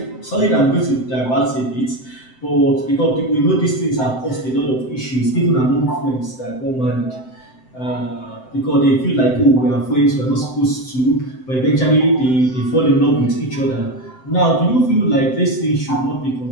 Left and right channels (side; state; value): right; late; 7.8 ms